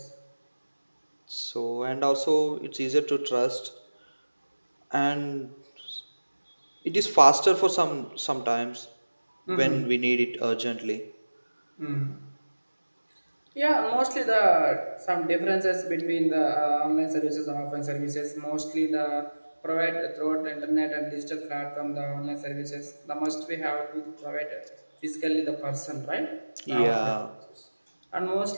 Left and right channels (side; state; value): both; inverted; correlation -1.00